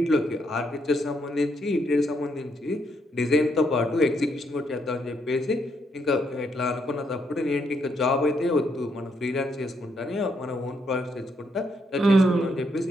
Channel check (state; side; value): normal; both; correlation 0.75